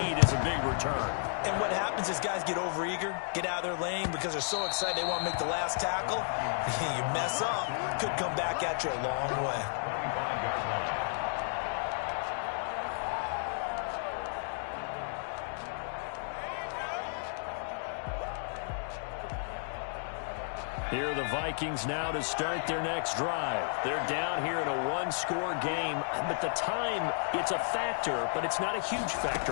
is a big return. And what happens is guys get overeager, get out of their lane because they're so excited they want to make the last tackle. You mess up, could come back at you a long way. Here are the Vikings now to start their next drive. They're down here in a one-score game, but the time, it's a factor, but it's not a huge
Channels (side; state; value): right; silent; 56 dB below the other